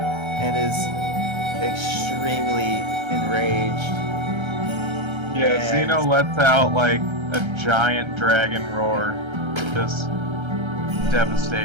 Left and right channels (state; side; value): late; left; 1.3 ms